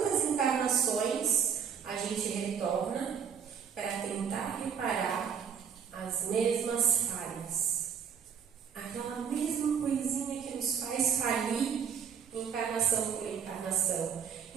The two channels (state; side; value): quieter; left; 7.3 dB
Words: encarnações a gente retorna para tentar reparar as mesmas falhas. Aquela mesma coisinha que nos faz falir encarnação por encarnação.